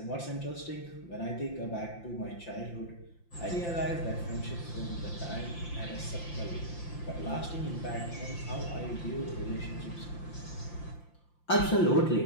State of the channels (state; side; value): late; right; 5.8 ms